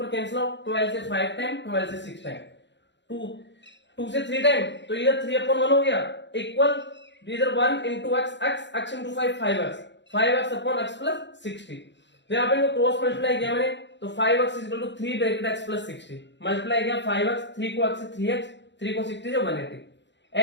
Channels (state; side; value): late; right; 0.52 ms